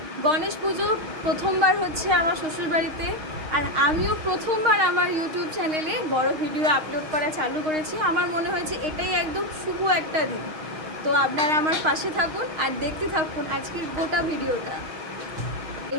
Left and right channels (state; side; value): late; left; 6.5 ms